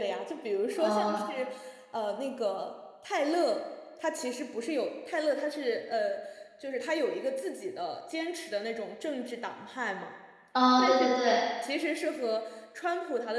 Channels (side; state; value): both; identical; correlation 1.00